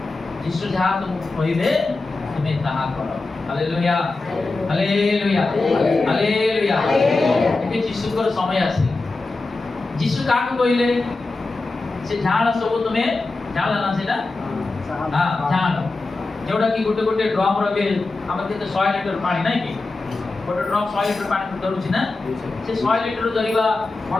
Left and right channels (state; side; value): quieter; right; 3.4 dB